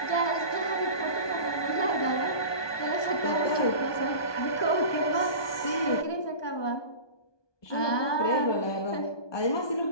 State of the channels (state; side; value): late; right; 1.2 ms